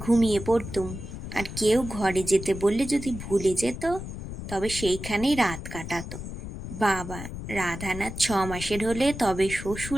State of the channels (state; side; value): noise; left; rumble, 9 dB below the sound